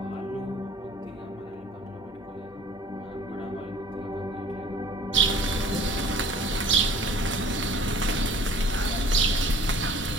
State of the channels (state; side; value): normal; both; correlation 0.50